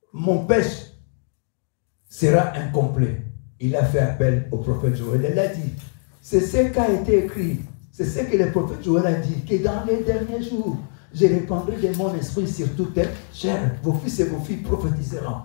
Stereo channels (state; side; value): silent; right; 64 dB below the other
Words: mon péché sera incomplet. Il a fait appel au prophète Joël. Il a dit, c'est ce qui a été écrit, c'est ce que le prophète Joël a dit, que dans les derniers jours, je répandrai de mon esprit sur toute chair. Vos fils et vos filles prophétiseront.